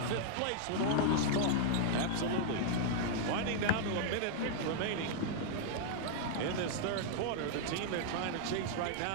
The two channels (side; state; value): both; different; correlation -0.01